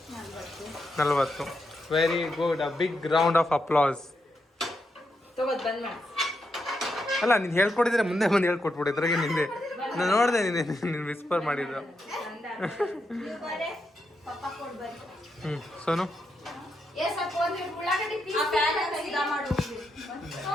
40. Very good. A big round of applause. ಅಲ್ಲ, ನೀನು ಹೇಳ್ಕೊಟ್ಟಿದ್ರೆ ಮುಂದೆ ಬಂದು ಹೇಳ್ಕೊಟ್ಬಿಡು. ಇದ್ರಾಗೆ ನಿಂದೆ ನಾನು ನೋಡಿದೆ, ನೀನು ವಿಸ್ಪರ್ ಮಾಡಿದ್ರು. Sonu,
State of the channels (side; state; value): both; normal; correlation 0.83